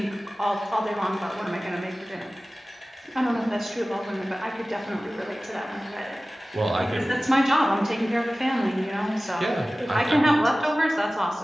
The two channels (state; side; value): normal; both; correlation 0.97